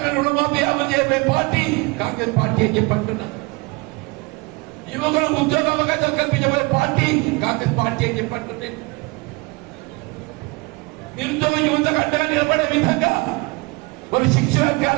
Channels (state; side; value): quieter; left; 25.8 dB